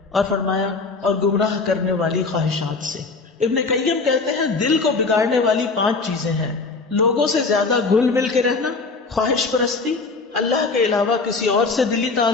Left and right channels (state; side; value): quieter; right; 4.0 dB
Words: اور فرمایا اور گمراہ کرنے والی خواہشات سے۔ ابن قیم کہتے ہیں دل کو بگاڑنے والی 5 چیزیں ہیں: لوگوں سے زیادہ گھل مل کے رہنا، خواہش پرستی، اللہ کے علاوہ کسی اور سے دلی